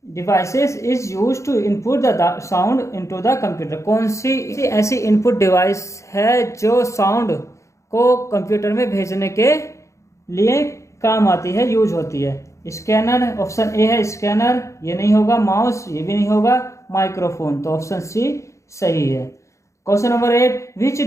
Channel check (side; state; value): right; late; 0.14 ms